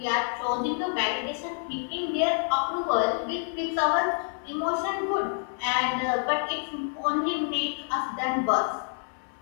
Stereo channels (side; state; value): right; silent; 59 dB below the other